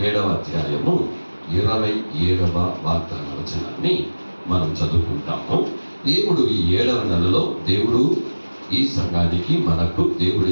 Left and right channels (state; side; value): inverted; both; correlation -1.00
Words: అధ్యాయము 27వ వాగ్దాన వచనాన్ని మనం చదువుకుంటాము. దేవుడు ఈ 7వ నెలలో దేవుడు ఈ సంఘానికి మనకు దేవుడు